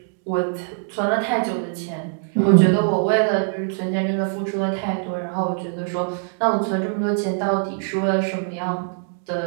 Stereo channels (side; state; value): left; silent; digital silence